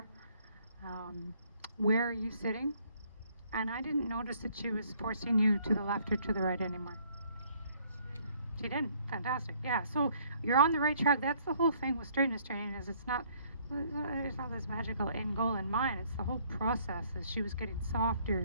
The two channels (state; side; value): inverted; both; correlation -0.63